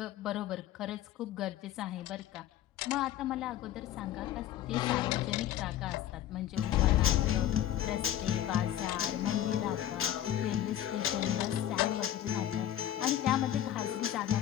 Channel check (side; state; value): right; quieter; 12.0 dB